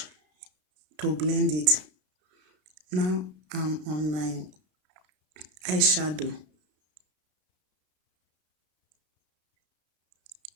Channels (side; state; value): left; late; 33 ms